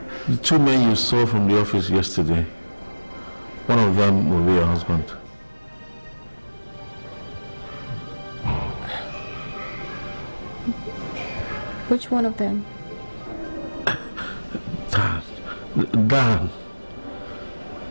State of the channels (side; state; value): both; inverted; correlation -1.00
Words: The two men you saw from the office yesterday, one of them will be your husband. Which one of them? Dan.